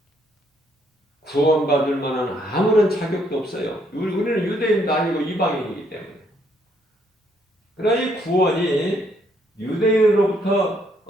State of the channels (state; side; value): normal; both; correlation 0.70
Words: 구원받을 만한 아무런 자격도 없어요. 우리는 유대인도 아니고 이방인이기 때문에. 그러나 이 구원이 유대인으로부터